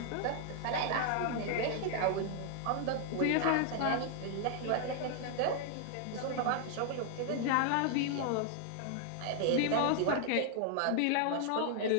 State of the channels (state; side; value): different; both; correlation 0.00